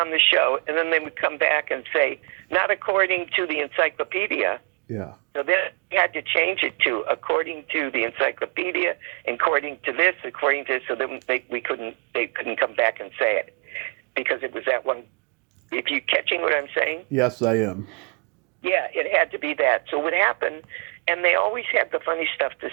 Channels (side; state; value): left; quieter; 37.2 dB